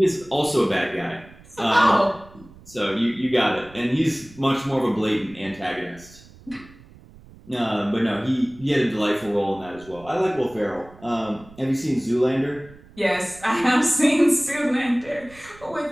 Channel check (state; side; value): noise; right; rumble, 22 dB below the sound